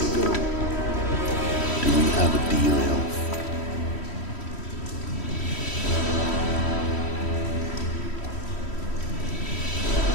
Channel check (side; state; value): right; late; 3.1 ms